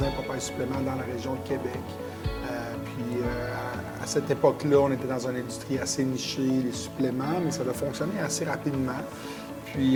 Papa et Supplément dans la région de Québec. Puis, à cette époque-là, on était dans une industrie assez nichée, les suppléments, mais ça a fonctionné assez rapidement.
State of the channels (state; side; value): identical; both; correlation 1.00